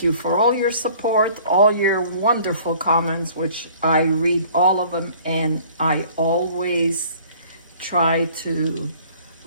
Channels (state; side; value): inverted; both; correlation -0.52